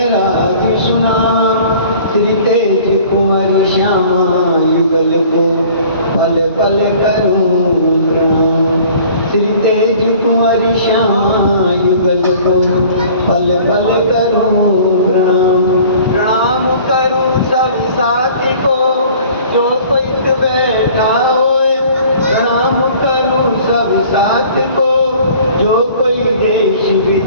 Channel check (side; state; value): both; inverted; correlation -0.50